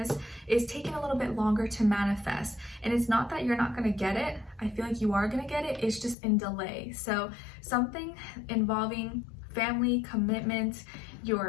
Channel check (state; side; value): drops out; right; at 6.2 s